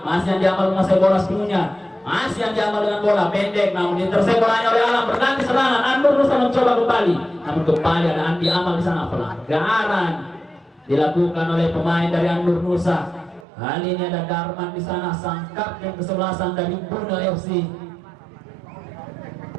Masih Andi Amal menguasai bola sepenuhnya. Masih yang diamal dengan bola pendek namun diteruskan bolanya oleh Alam berganti serangan. An-Nur Nusa mencoba kembali namun kembali ada Andi Amal di sana. Pelanggaran dilakukan oleh pemain dari An-Nur Nusa. Kali ini ada Darman di sana, sang kapten kesebelasan dari Bunda FC.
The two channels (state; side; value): drops out; left; at 13.4 s